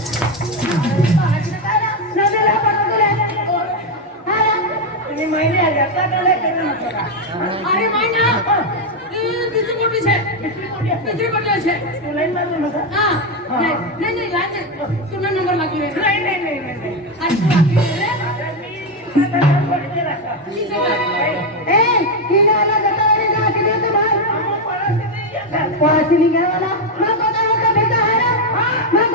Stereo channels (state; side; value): normal; both; correlation 0.06